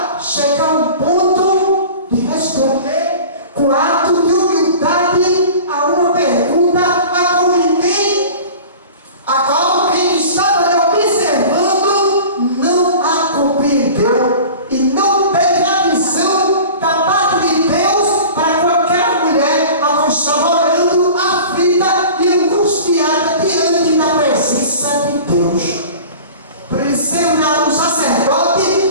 chega a um ponto de responder com ato de humildade a uma pergunta a qual quem estava lhe observando não a compreendeu e não teve a visão da parte de Deus para qualquer mulher a qual estava orando, aflita e angustiada diante da presença de Deus. Por isso, um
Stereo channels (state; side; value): inverted; both; correlation -0.39